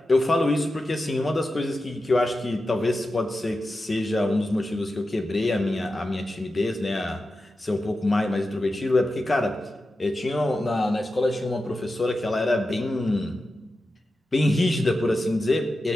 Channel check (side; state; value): both; normal; correlation 0.91